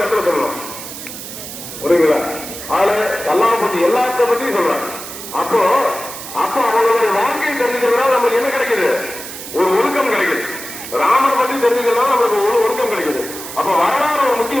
இடத்துல சொல்லலாம். புரியுங்களா? அதுல அல்லாஹ் பத்தி எல்லாத்த பத்தியும் சொல்றாங்க. அப்போ அவங்களுடைய வாழ்க்கையை தெரிஞ்சுக்கிறதுனால நமக்கு என்ன கிடைக்குது, ஒரு ஒழுக்கம் கிடைக்குது. ராமர் பத்தி தெரிஞ்சுக்கிறதுனால நமக்கு ஒரு ஒழுக்கம் கிடைக்குது. அப்ப வரலாறு ஒரு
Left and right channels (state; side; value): noise; right; hiss, 11 dB below the sound